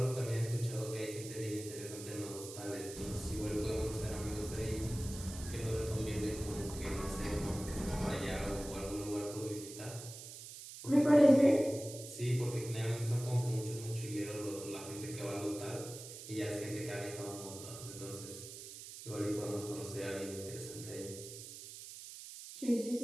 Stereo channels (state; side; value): noise; right; hiss, 12 dB below the sound